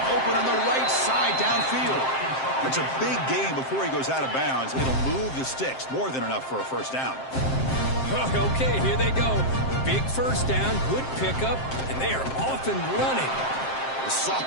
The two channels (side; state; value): right; late; 7.6 ms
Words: open on the right side downfield. That's a big gain before he goes out of bounds. It'll move the sticks. More than enough for a 1st down. Okay, here they go. Big 1st down, good pickup, and they are off and running. The